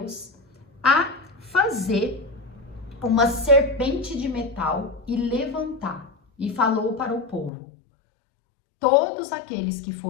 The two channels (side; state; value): right; drops out; at 7.5 s